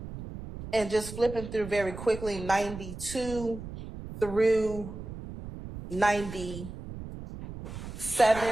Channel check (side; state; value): right; noise; rumble, 11 dB below the sound